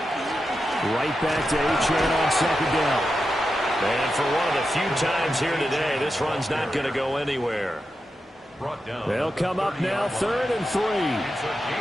Right back to Achane on 2nd down. And for one of the few times here today, this run's not going to go anywhere. They'll come up now 3rd and 3.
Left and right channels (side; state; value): both; normal; correlation 0.89